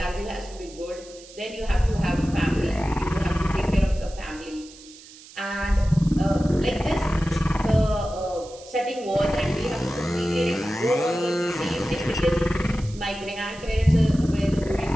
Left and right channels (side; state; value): right; noise; hiss, 20 dB below the sound